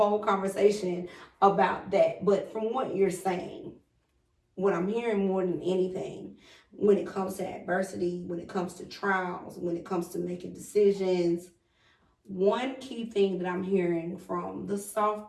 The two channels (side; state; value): both; identical; correlation 1.00